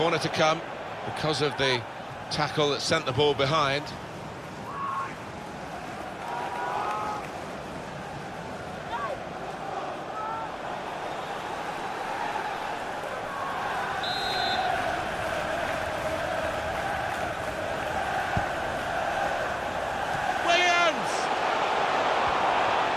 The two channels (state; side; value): identical; both; correlation 1.00